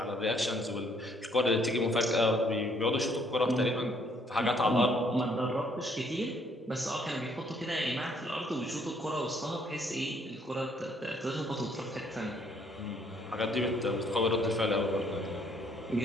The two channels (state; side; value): normal; both; correlation 0.66